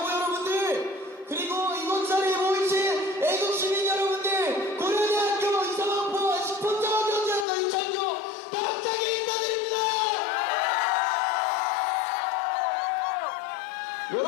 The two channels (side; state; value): right; drops out; at 7.5 s